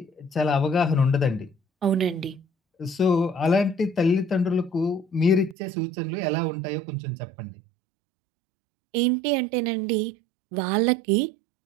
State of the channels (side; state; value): left; drops out; at 5.6 s